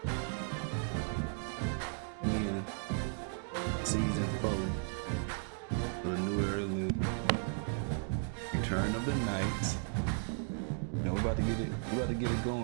Yeah. Season 4 of the new Era League. Return of the Knights. You know, we're about to get it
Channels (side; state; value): left; silent; 54 dB below the other